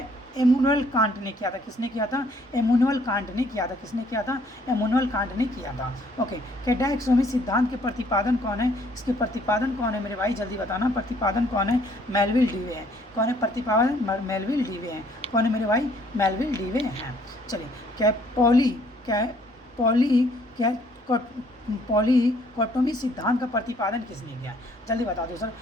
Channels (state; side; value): normal; both; correlation 0.63